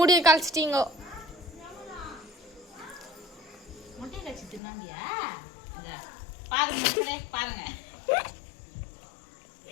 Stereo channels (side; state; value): right; drops out; at 4.6 s